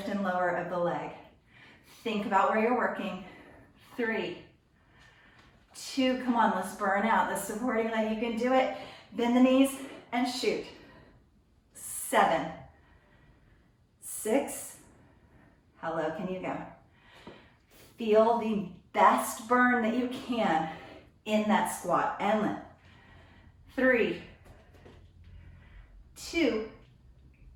and lower of the leg. Think about where you're working. 3, 2, come on, let's burn out the supporting leg. You can do it. Bend the knees and shoot. 7, 6, how low can you go? Feel the best burn that you can in that squat and lift. 3, 2,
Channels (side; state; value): both; identical; correlation 1.00